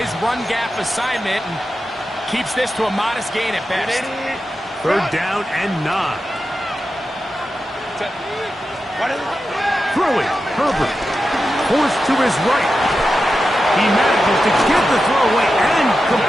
run gap assignment, and keeps this to a modest gain at best. 3rd down and 9. Throwing, Herbert. Forced to his right. He manages to get the throw away and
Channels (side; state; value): both; normal; correlation 0.91